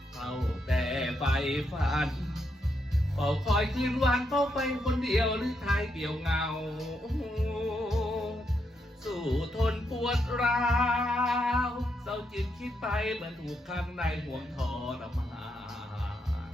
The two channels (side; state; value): both; normal; correlation 0.80